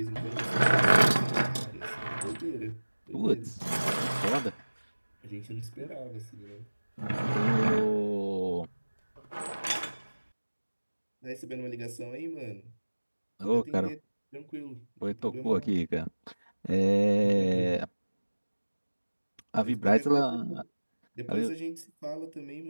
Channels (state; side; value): inverted; both; correlation -1.00